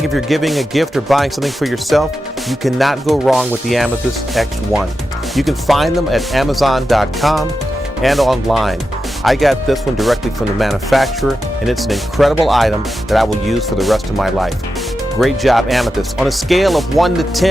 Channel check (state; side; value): normal; both; correlation 0.90